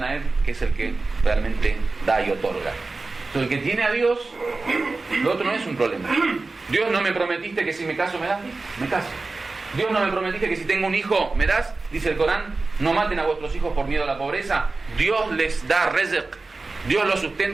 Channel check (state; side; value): quieter; left; 3.6 dB